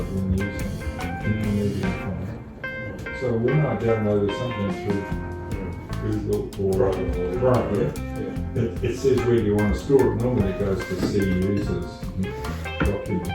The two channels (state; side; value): identical; both; correlation 1.00